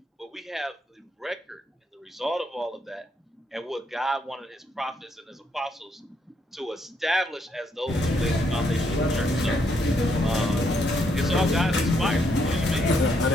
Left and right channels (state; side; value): normal; both; correlation 0.74